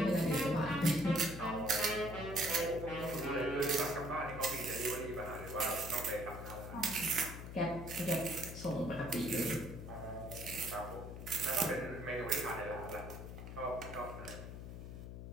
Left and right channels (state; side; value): noise; left; hum, 9 dB below the sound